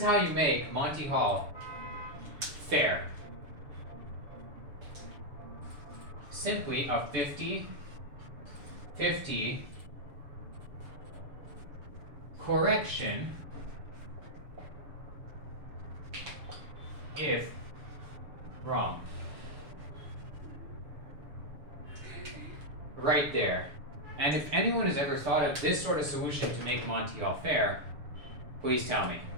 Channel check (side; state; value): left; late; 7.1 ms